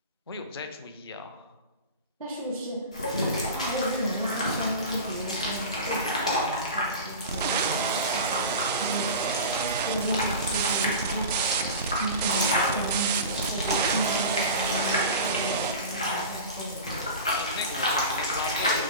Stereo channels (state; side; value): inverted; both; correlation -0.30